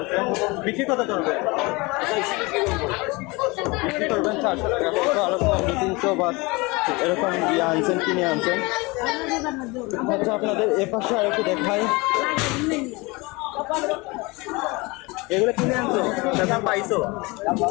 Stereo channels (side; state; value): right; quieter; 25.0 dB